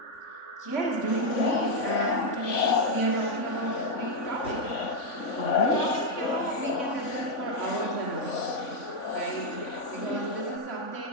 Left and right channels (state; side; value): late; right; 3.5 ms